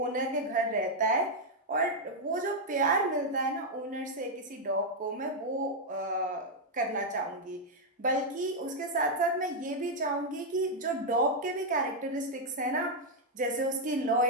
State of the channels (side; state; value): both; normal; correlation -0.01